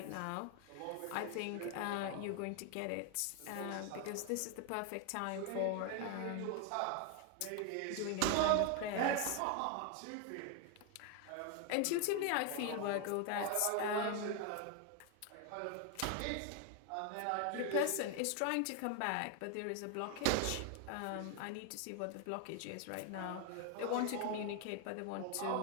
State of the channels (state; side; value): different; both; correlation 0.01